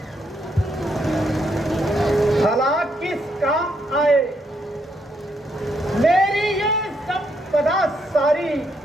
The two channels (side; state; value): both; normal; correlation 0.76